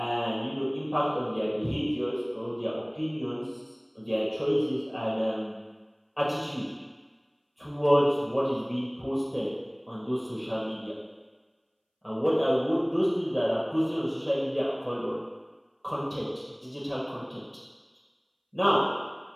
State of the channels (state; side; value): identical; both; correlation 1.00